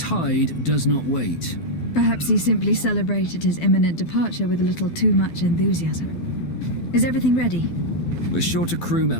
does not wait. Perhaps he simply celebrated his imminent departure with a little too much enthusiasm. Is everything ready? We're short a crew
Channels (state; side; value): late; right; 12 ms